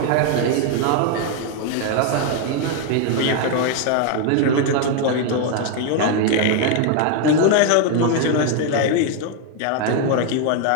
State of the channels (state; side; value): different; both; correlation 0.00